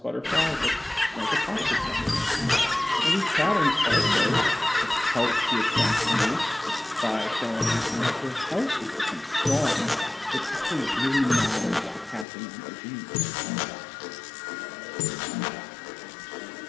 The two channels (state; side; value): drops out; right; at 12.2 s